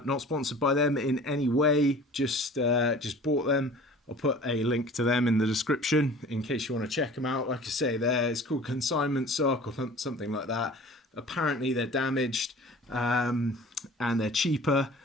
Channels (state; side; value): normal; both; correlation 0.45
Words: sponsored by them in any way, just bought them. I'll put a link to them in the description in case you want to check them out. Like I say, it's called Consignment Sock or something like that. Apparently they're damaged, and they're cheaper